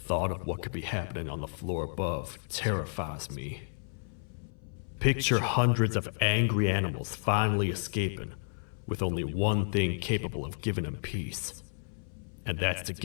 of what could be happening on the floor above terrifies me. Picture hundreds of angry animals finally escaping, with only one thing capable of giving them peace. And that's to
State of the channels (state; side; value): silent; right; 57 dB below the other